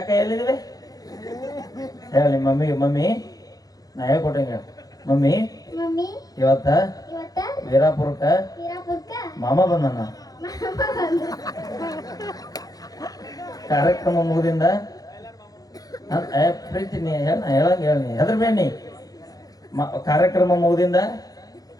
ಎಲ್ಲಿದ್ದೀವಿ ಹೇಳ ನಿಮ್ಮ ಮಮ್ಮಿಗೆ. ಮಮ್ಮಿ ನಾ ಹೇಳ್ಕೊಟ್ಟಂಗೆ ಮಮ್ಮಿ ಮಮ್ಮಿ ಇವತ್ತ ವೀರಾಪುರಕ್ಕ ಮಾಮ ಬಂದಣ್ಣ. ಕಾರ್ಯಕ್ರಮ ಮುಗಿದಿಂದ ಪ್ರೀತಿ ನೀ ಹೇಳಂಗ ಹೇಳಿ ಹೆದ್ರ ಬೇಣಿ ಕಾರ್ಯಕ್ರಮ ಮುಗಿದಿಂದ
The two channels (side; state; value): right; late; 0.18 ms